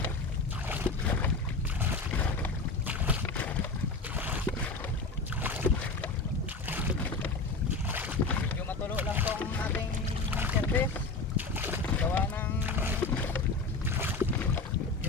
Yung matulo lang tong ating service. Gawa ng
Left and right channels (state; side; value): quieter; right; 3.7 dB